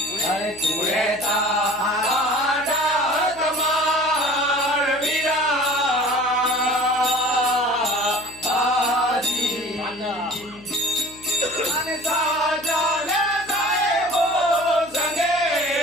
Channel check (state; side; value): noise; left; hum, 23 dB below the sound